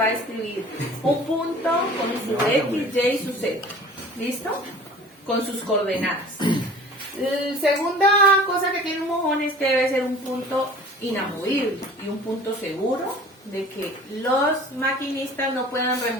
a escribir un punto con su X, Y y su Z. ¿Listo? Con sus coordenadas. La segunda cosa que tiene un mojón es que debe ser un punto inamovible y un punto seguro de que los maquinistas no puedan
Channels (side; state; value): both; normal; correlation 0.44